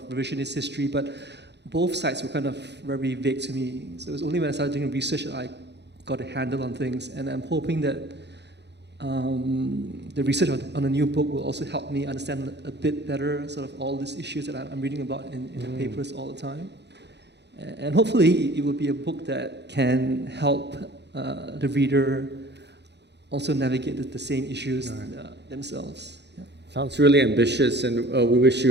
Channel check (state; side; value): late; left; 0.50 ms